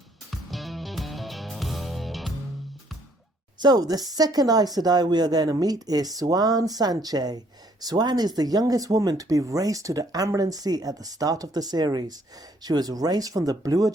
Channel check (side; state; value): both; normal; correlation 0.65